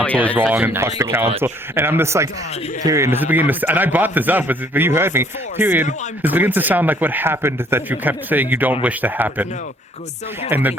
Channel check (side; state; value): both; normal; correlation 0.61